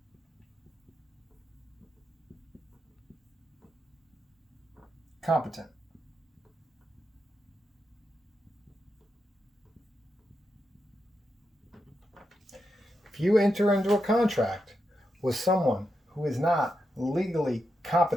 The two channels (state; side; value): normal; both; correlation 0.85